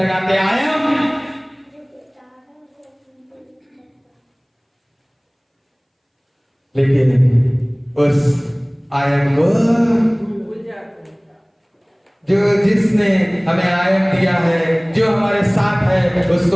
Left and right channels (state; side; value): identical; both; correlation 1.00